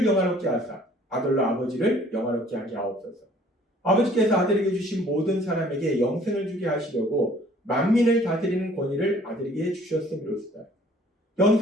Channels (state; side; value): normal; both; correlation 0.56